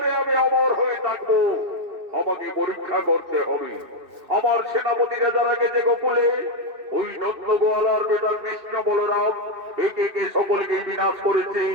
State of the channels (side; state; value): left; late; 2.6 ms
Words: আমি অমর হয়ে থাকবো। আমাকে পরীক্ষা করতে হবে। আমার সেনাপতিরা যারা গেছে গোকুলে, ওই নন্দ গোয়ালার বেটা কৃষ্ণ বলরাম একে একে সকলকে বিনাশ করেছে।